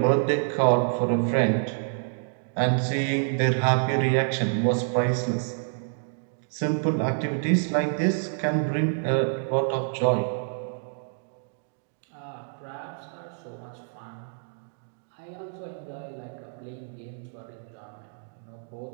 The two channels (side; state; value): left; silent; digital silence